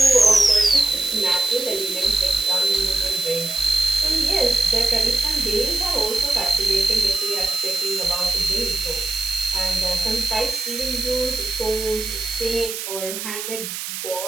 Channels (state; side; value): noise; right; hiss, 6 dB below the sound